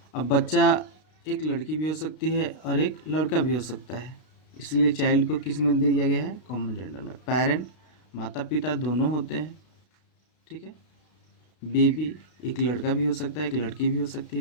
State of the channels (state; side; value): late; right; 32 ms